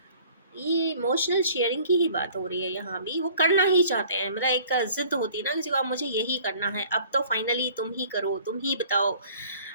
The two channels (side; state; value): both; inverted; correlation -0.51